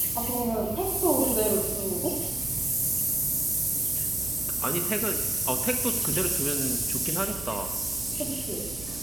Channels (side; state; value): right; noise; hum, 13 dB below the sound